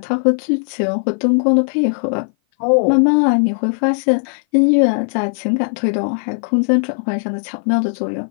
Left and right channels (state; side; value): silent; right; 58 dB below the other